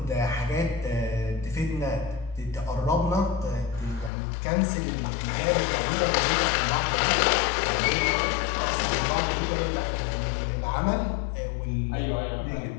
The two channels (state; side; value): drops out; right; at 4.1 s